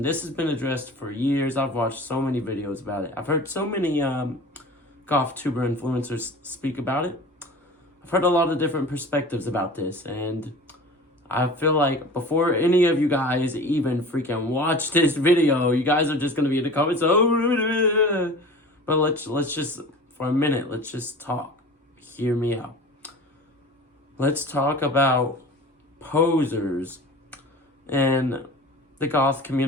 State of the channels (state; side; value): normal; both; correlation 0.38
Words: this has been addressed for years. I've watched so many videos about it. I've heard so many Goth tuber influencers speak about it. I've heard a lot of different perspectives about this, and I feel like before any of you guys even freaking watch this video, you guys are just gonna be in the comments. Oh, but let's just for a minute. Let's just talk. Hear me out. Let's talk about posers and the Goth